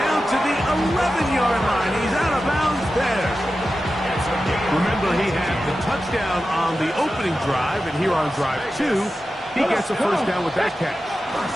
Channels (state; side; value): normal; both; correlation 0.92